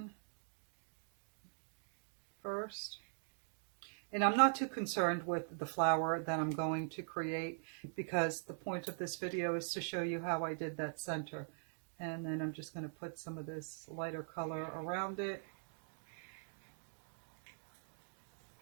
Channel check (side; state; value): left; silent; digital silence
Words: first. And I'm not too concerned with the flower that I'm going to create because the point of this video is to show you how I did that center. And then I'm just going to put some of this lighter color around it.